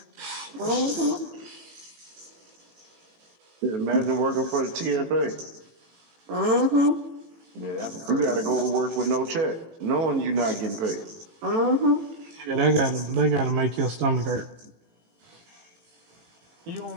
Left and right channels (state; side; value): late; left; 18 ms